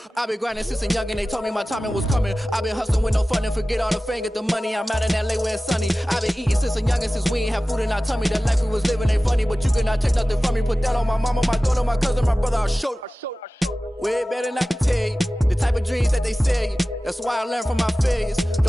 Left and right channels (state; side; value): normal; both; correlation 0.96